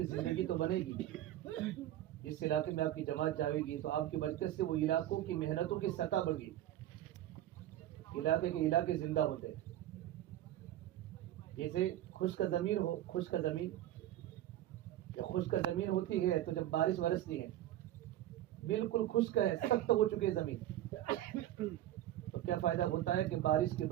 زندگی تو بنے گی. جس علاقے میں آپ کی جماعت جائے گی تو آپ کی برکت سے وہ علاقوں کی محنتوں کی سطح بڑھ گئی. علاقے کے علاقے زندہ ہوتے ہیں. جیسے خشک زمین ہو، خشک زمین جب خشک زمین ہوتی ہے تو جب بارش برستی ہے بالکل خشک ہے، سخت ہو چکی ہے زمین، تو کیا فائدہ ہوتا ہے کہ بارش کی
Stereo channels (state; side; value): quieter; left; 13.4 dB